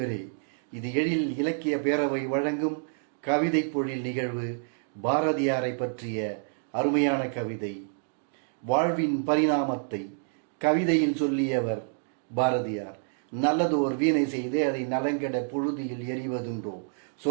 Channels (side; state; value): left; silent; digital silence